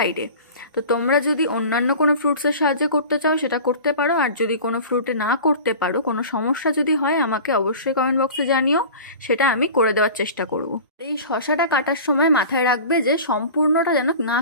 তো তোমরা যদি অন্যান্য কোনো ফ্রুটসের সাহায্যে করতে চাও সেটা করতে পারো, আর যদি কোনো ফ্রুটে না করতে পারো, কোনো সমস্যা যদি হয় আমাকে অবশ্যই কমেন্ট বক্সে জানিও, সেটা আমি করে দেওয়ার চেষ্টা করব। এই শসাটা কাটার সময় মাথায় রাখবে যে সম্পূর্ণটা যেন না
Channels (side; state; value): both; inverted; correlation -0.37